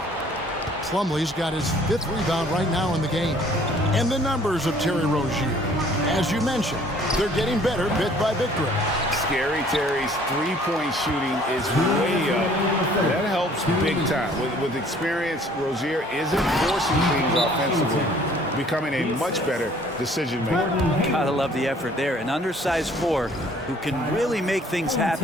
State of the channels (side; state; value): both; normal; correlation 0.56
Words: Plumlee's got his 5th rebound right now in the game. And the numbers of Terry Rozier. As you mentioned, they're getting better bit by bit. Scary Terry's three-point shooting is way up. That helps big time. With experience, Rozier isn't forcing things offensively, becoming a much better decision maker. Gotta love the effort there. An undersized 4 who can really make things